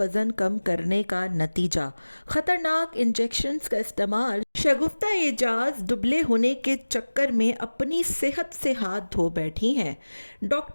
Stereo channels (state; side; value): inverted; both; correlation -1.00